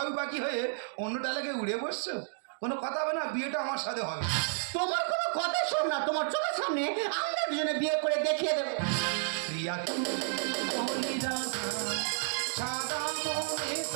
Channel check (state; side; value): silent; left; digital silence